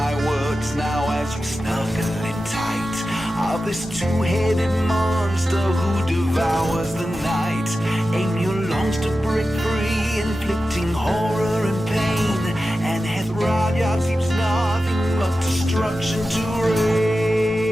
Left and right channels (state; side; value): normal; both; correlation 0.93